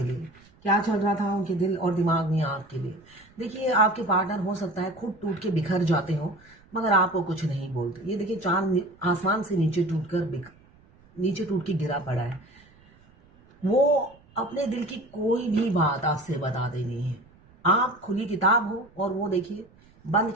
लिए, क्या चल रहा था उनके दिल और दिमाग में आपके लिए। देखिए आपके पार्टनर हो सकता है खुद टूट के बिखर जाते हो, मगर आपको कुछ नहीं बोलते। ये देखिए चांद आसमान से नीचे टूट के गिरा पड़ा है। वो अपने दिल की कोई भी बात आपसे बताते नहीं है। आप खुली किताब हो और वो देखिए बंद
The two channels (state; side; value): noise; right; rumble, 28 dB below the sound